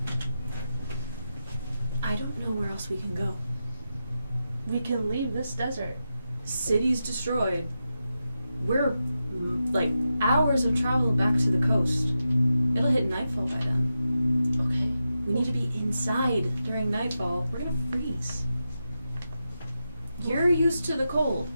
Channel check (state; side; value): inverted; both; correlation -0.89